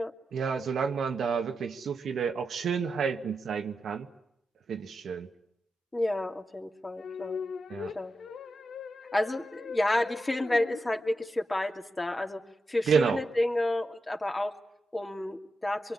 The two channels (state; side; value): normal; both; correlation 0.88